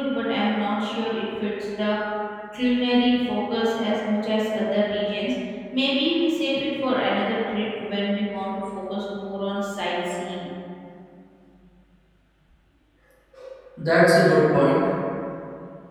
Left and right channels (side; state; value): both; identical; correlation 1.00